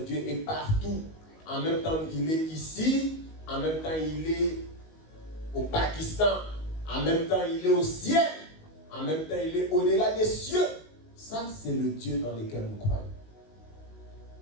est partout. En même temps, il est ici. En même temps, il est au Pakistan. En même temps, il est au ciel. En même temps, il est au-delà des cieux. Ça, c'est le Dieu dans lequel nous croyons.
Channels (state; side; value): late; right; 19 ms